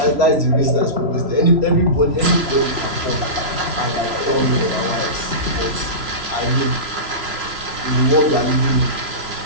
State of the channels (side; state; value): left; late; 3.0 ms